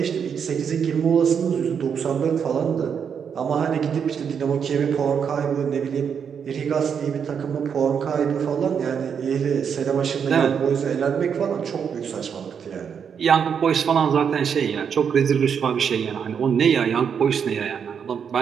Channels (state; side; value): quieter; left; 7.2 dB